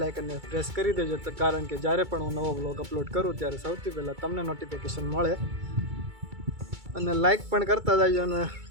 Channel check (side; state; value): left; late; 2.3 ms